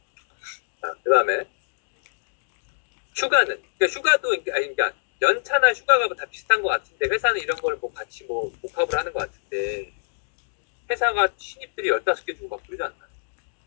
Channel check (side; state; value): right; silent; digital silence